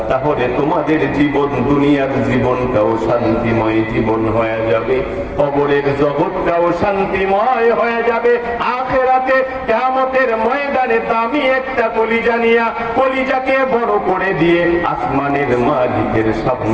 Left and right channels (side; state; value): both; identical; correlation 1.00